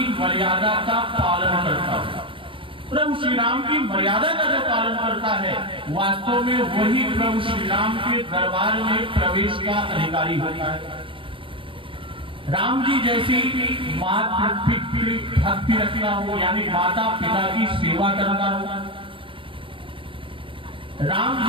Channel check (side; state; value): left; late; 0.25 ms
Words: मर्यादा का पालन करता है। प्रभु श्री राम की मर्यादा का जो पालन करता है, वास्तव में वही प्रभु श्री राम के दरबार में प्रवेश का अधिकारी होता है। राम जी जैसी मातृ भक्ति रखना हो, यानी माता पिता की सेवा करना हो, राम